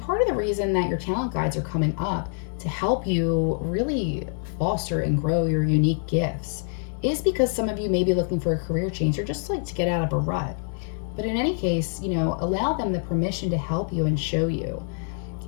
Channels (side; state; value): right; silent; 61 dB below the other